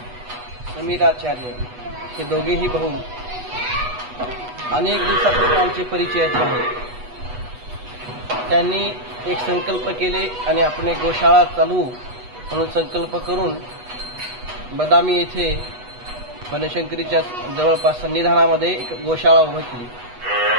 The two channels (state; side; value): late; left; 8.2 ms